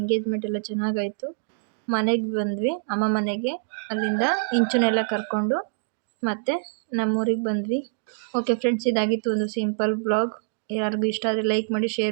ಎಲ್ಲ ಚೆನ್ನಾಗಾಯಿತು. ಮನೆಗೆ ಬಂದ್ವಿ, ಅಮ್ಮ ಮನೆಗೆ. ಅಲ್ಲಿಂದ ಇಂಚುನೆಲ್ಲ ಕರ್ಕೊಂಡು ಮತ್ತೆ ನಮ್ಮೂರಿಗೆ ಬಂದ್ವಿ. ಓಕೆ ಫ್ರೆಂಡ್ಸ್, ಇದಾಗಿತ್ತು ಒಂದು ಸಿಂಪಲ್ ಬ್ಲಾಗ್. ಯಾರಿಗೂ ಇಷ್ಟ ಆದರೆ ಲೈಕ್ ಮಾಡಿ,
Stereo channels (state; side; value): silent; left; digital silence